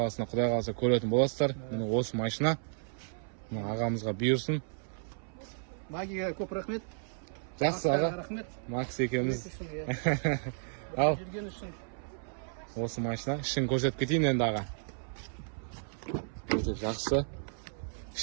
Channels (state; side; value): silent; left; 56 dB below the other